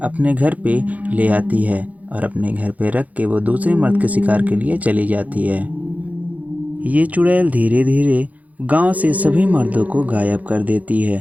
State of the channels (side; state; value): left; late; 0.075 ms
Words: अपने घर पे ले आती है और अपने घर पे रख के वो दूसरे मर्द के शिकार के लिए चली जाती है। ये चुड़ैल धीरे धीरे गांव से सभी मर्दों को गायब कर देती है।